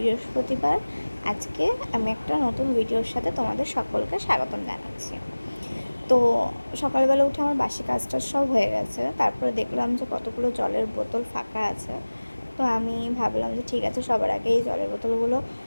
আজকে আমি একটা নতুন ভিডিওর সাথে তোমাদের সকলকে স্বাগতম জানাচ্ছি। তো সকালবেলা উঠে আমার বাসি কাজটা সব হয়ে গেছে। তারপরে দেখলাম যে কতগুলো জলের বোতল ফাঁকা আছে। তো আমি ভাবলাম যে ঠিক আছে, সবার আগে এই জলের বোতলগুলো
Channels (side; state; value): both; inverted; correlation -1.00